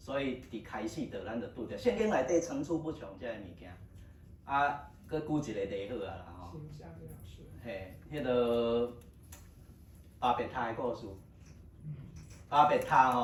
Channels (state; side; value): identical; both; correlation 1.00